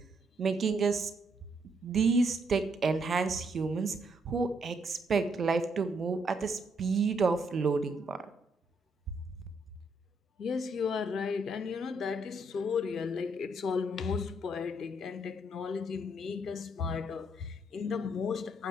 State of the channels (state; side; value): normal; both; correlation 0.74